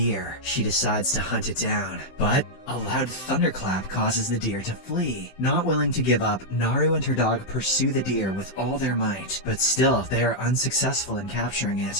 She decides to hunt it down, but a loud thunderclap causes the deer to flee. Not willing to give up, Naru and her dog pursue the deer with all their might, but still they are unsuccessful in capturing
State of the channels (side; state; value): right; late; 16 ms